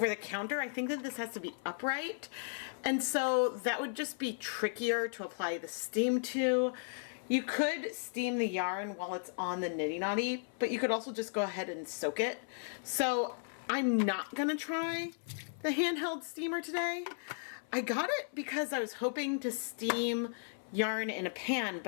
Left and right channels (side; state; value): right; silent; 54 dB below the other